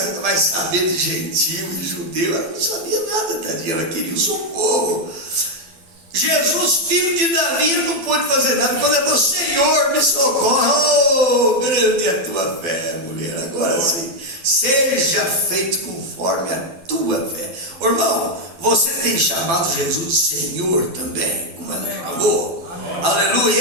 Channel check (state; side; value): late; left; 12 ms